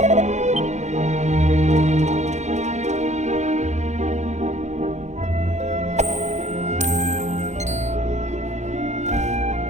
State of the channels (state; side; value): late; left; 0.33 ms